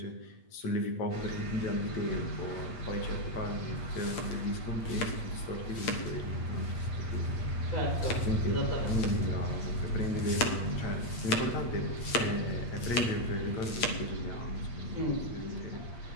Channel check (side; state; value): right; late; 8.6 ms